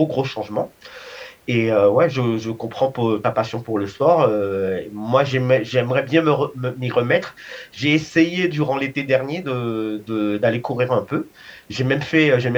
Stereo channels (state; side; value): identical; both; correlation 1.00